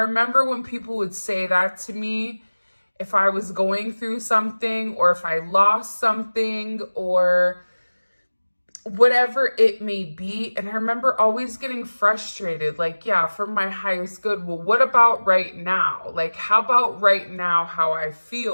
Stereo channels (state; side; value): inverted; both; correlation -1.00